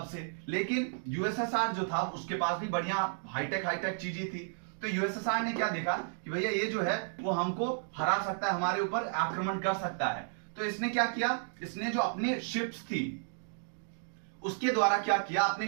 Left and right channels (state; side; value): silent; left; digital silence